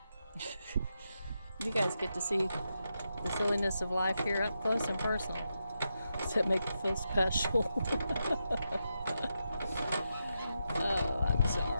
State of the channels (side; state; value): both; inverted; correlation -0.86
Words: You guys get to see the silliness of life here up close and personal. Does that make you feel special? Oh, I'm